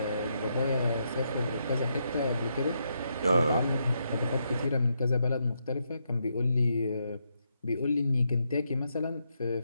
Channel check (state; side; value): inverted; both; correlation -0.80